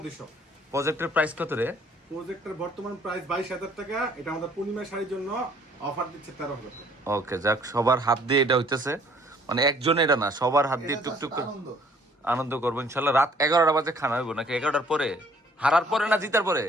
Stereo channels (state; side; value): normal; both; correlation 0.59